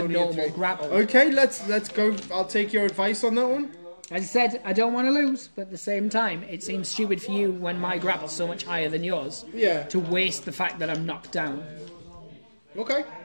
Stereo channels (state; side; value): inverted; both; correlation -1.00